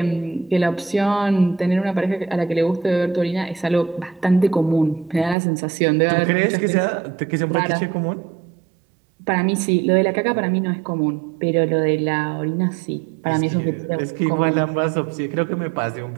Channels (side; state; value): left; drops out; at 5.4 s